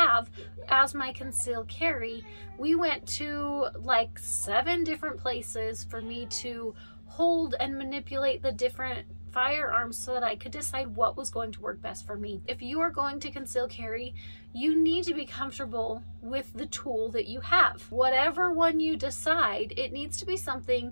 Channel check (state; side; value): inverted; both; correlation -1.00